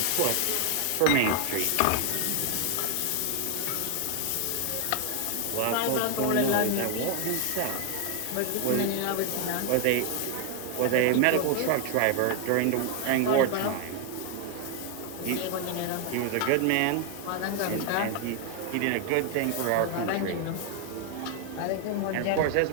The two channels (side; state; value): both; different; correlation 0.00